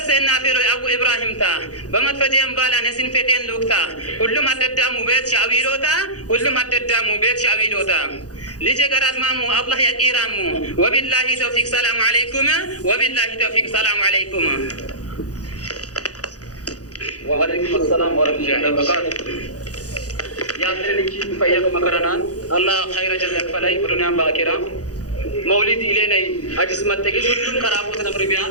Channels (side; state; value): right; late; 0.67 ms